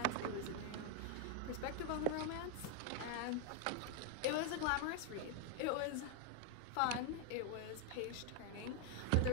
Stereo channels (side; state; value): both; different; correlation 0.00